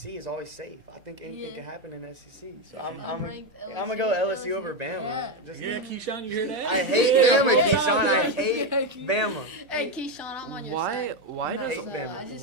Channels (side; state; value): left; late; 1.9 ms